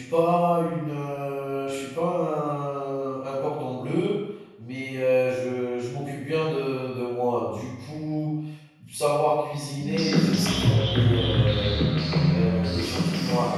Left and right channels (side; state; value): both; identical; correlation 1.00